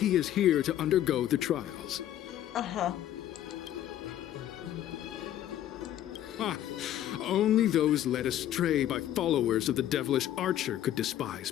is here to undergo the trials. Aha. Only those led astray by followers of the devilish archer could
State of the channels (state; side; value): quieter; right; 11.9 dB